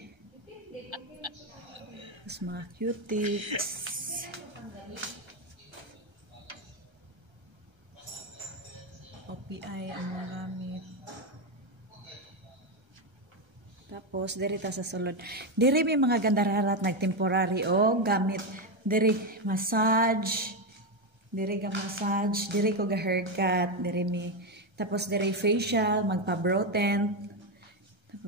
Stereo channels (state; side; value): late; left; 1.3 ms